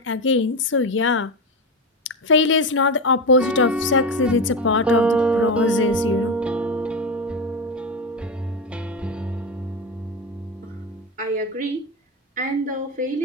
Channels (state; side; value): normal; both; correlation 0.17